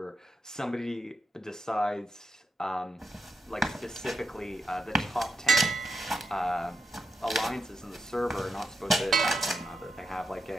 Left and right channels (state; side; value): normal; both; correlation 0.85